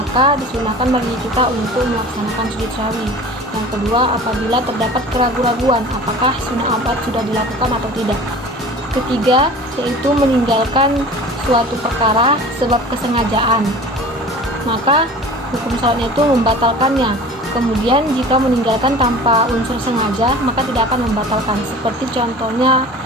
disunahkan bagi kita untuk melaksanakan sujud syahwi. Yang kedua, apabila terdapat keraguan-raguan apakah sunnah abad sudah dilakukan atau tidak. Ketiga, yaitu meninggalkan suatu perkara sebab kesengajaan, maka hukum sholatnya itu membatalkannya. Kemudian jika meninggalkan tanpa unsur sengaja maka tidak akan membatalkan, seperti contohnya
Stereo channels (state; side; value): normal; both; correlation 0.40